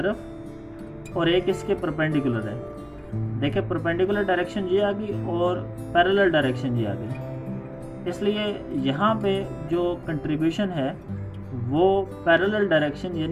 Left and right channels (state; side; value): identical; both; correlation 1.00